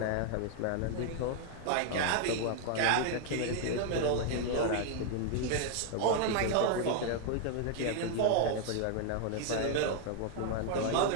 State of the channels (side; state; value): both; different; correlation 0.00